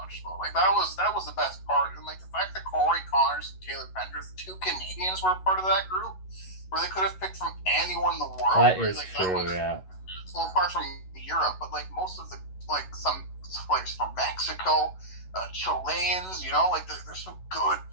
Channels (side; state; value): right; late; 11 ms